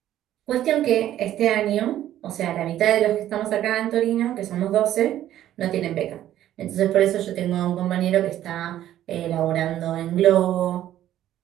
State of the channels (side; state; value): left; quieter; 12.4 dB